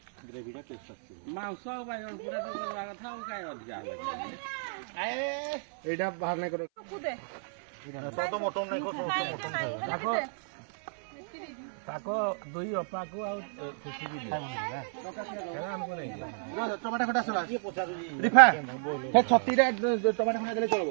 ग्रेवी टा टेस्ट आछी ମାଉସ ବାଇଗଣ ପୁରା ତ କରିବା କଥା ଆଉ କାଇଁ ଅଧିକା एडा बाहर नहीं करो কুদে तो मोटन नहीं खो मोटन ତାକୁ ତାକୁ ଦୁଇ ଅପାକୁ ଆଉ ଖୁସି ବି ଦିଅ ଆମକୁ ନେଇ टमाटर खटा सला रिफा हे 36 रे टमाटर खटा देले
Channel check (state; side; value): silent; left; 57 dB below the other